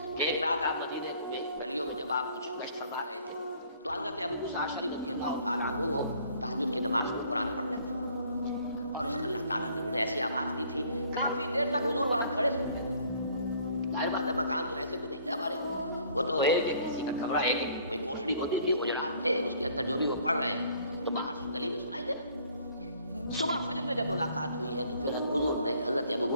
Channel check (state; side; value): inverted; both; correlation -0.58